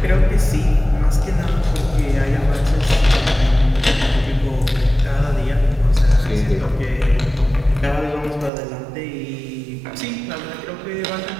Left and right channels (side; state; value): left; drops out; at 8.5 s